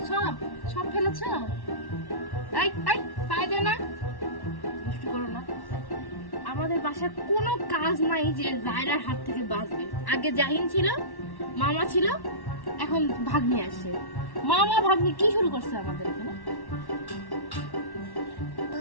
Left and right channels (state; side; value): late; right; 1.1 ms